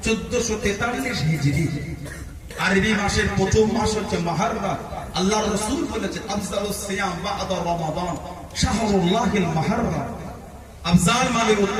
1443 হিজরি। আরবি মাসের প্রথম মাস হচ্ছে মুহররম। আল্লাহর রাসূল বলেছেন আফজালুস সিয়াম বা'দা রমাদান শাহরুল্লাহিল মুহররম। আফজাল মানে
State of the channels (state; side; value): identical; both; correlation 1.00